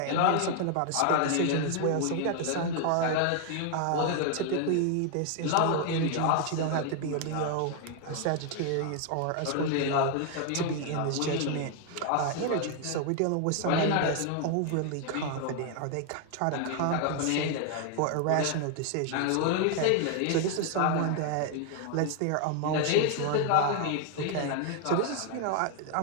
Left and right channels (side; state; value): both; different; correlation 0.00